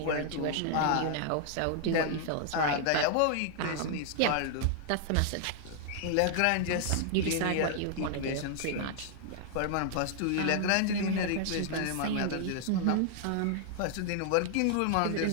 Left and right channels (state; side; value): different; both; correlation 0.00